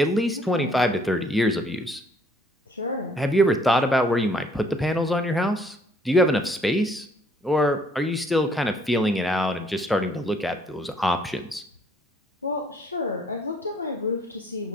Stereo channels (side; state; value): both; normal; correlation 0.62